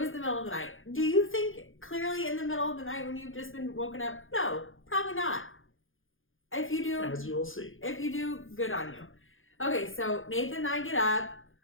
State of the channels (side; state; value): right; late; 0.59 ms